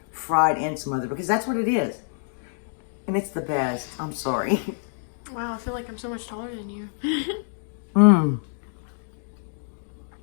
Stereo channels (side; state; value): right; silent; digital silence